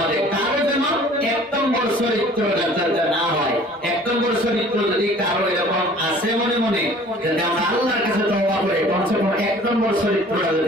মাঝে কারো যেন 1 নম্বর চরিত্র যাতে না হয়। 1 নম্বর চরিত্র যদি কারো এরকম আছে মনে মনে, যদি আমরা আল্লাহর কাছে তওবা করি, কমসে কম 1 নম্বর চরিত্রটা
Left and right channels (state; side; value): normal; both; correlation 0.50